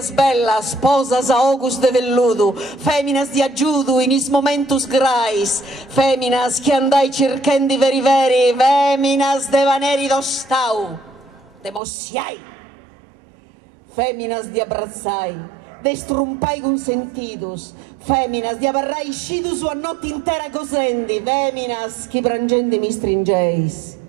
bellas, posas a ogus de velludo, feminas di aggiudu in is momentus grais, feminas che andai circhendi veri veri, feminas de vaneri d'ostau, de mossiai, feminas di abbrazzai, de strumpai consentidos, feminas di abarrai scidus a notte intera cosendi, feminas chi prangendi mi stringeis,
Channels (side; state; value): left; drops out; at 11.8 s